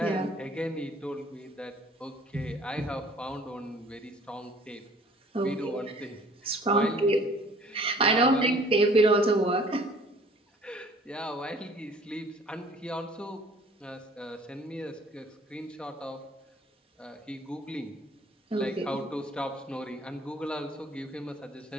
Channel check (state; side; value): normal; both; correlation 0.53